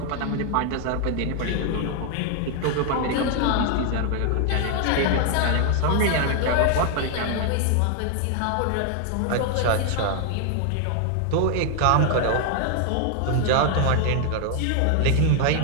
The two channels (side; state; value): both; different; correlation 0.00